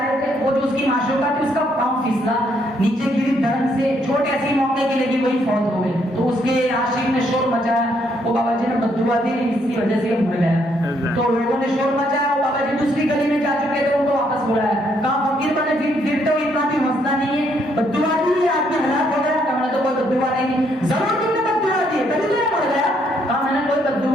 رہے تھے, وہ جو اس کی معشوقہ تھی اس کا پاؤں پھسلا, نیچے گری دھڑن سے, چھوٹے ایسی موقع کی لگی, وہی فوت ہو گئے. تو اس کے عاشق نے شور مچایا, وہ بابا جی نے بددعا دی, اس کی وجہ سے یہ مر گیا. تو لوگوں نے شور مچایا, وہ بابا جی دوسری گلی میں جا چکے تھے, ان کو واپس بلایا, کہا فقیر بنے پھرتے ہو, اتنا بھی مسئلہ نہیں ہے, بددعا دی, آدمی ہلاک ہو گیا. کہا میں نے تو کوئی بددعا نہیں دی. ضرور تم نے بددعا دی ہے, تبھی تو یہ مر گیا. کہا میں نے کوئی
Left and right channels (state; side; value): normal; both; correlation 0.72